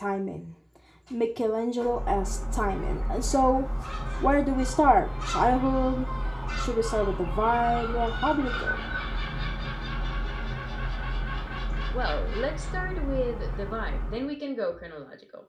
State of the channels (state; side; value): identical; both; correlation 1.00